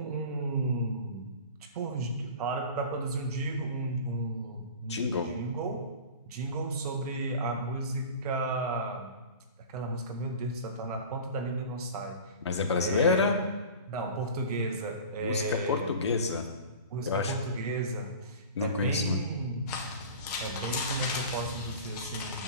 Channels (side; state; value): both; inverted; correlation -0.37